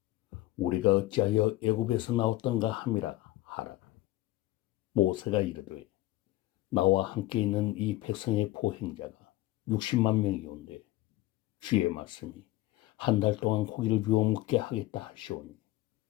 우리가 어찌하여 애굽에서 나왔던가 함이라 하라. 모세가 이르되 나와 함께 있는 이 백성의 보행자가 60만 명이온데 주의 말씀이 한 달 동안 고기를 주어 먹게 하겠다 하시오니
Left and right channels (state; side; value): quieter; right; 16.8 dB